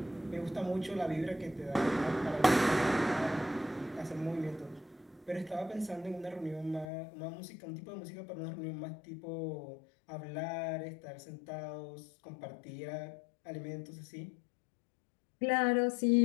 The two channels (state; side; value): drops out; right; at 6.9 s